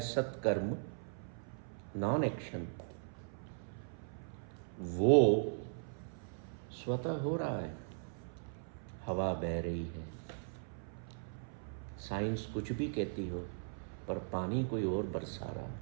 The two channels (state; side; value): silent; left; 52 dB below the other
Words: सत्कर्म, नॉन एक्शन, वो स्वतः हो रहा है। हवा बह रही है, साइंस कुछ भी कहती हो, पर पानी कोई और बरसा रहा है।